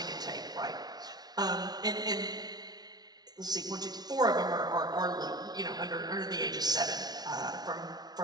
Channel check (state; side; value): late; left; 0.19 ms